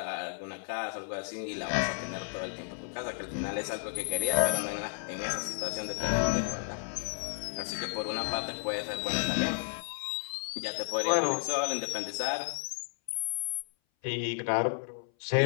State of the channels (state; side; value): silent; right; 56 dB below the other